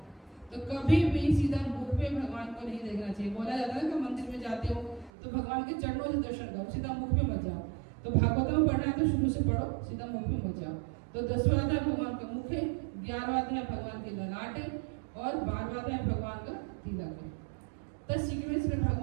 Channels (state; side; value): drops out; left; at 5.1 s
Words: तो कभी भी सीधा मुख पे भगवान को नहीं देखना चाहिए। बोला जाता है कि मंदिर में जाते हो तो भगवान के चरणों से दर्शन करो, सीधा मुख पे मत जाओ। तो भागवतम पढ़ना है तो शुरू से पढ़ो, सीधा मुख पे मत जाओ। तो 10वां अध्याय भगवान का मुख है, 11वां अध्याय भगवान के ललाट है और 12वां अध्याय भगवान का तिलक है। तो सीक्वेंस में